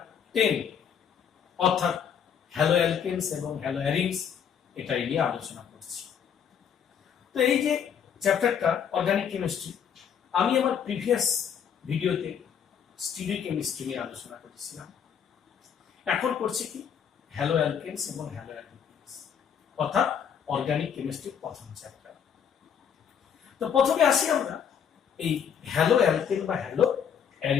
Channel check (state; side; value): quieter; right; 7.9 dB